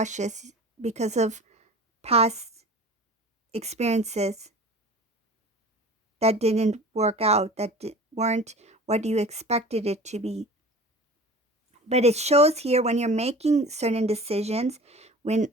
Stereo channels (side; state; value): both; normal; correlation 0.40